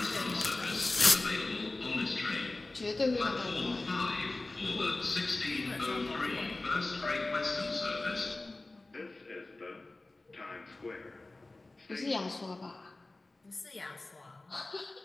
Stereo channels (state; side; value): quieter; right; 3.0 dB